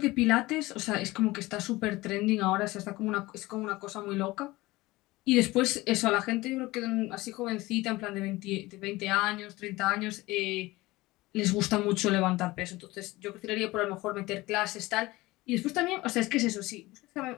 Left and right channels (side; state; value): right; quieter; 19.9 dB